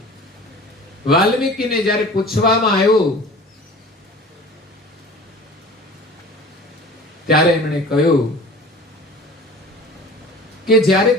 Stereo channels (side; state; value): both; normal; correlation 0.42